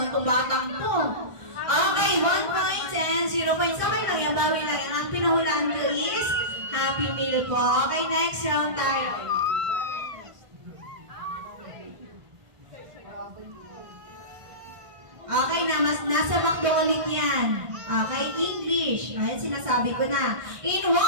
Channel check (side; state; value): left; late; 1.5 ms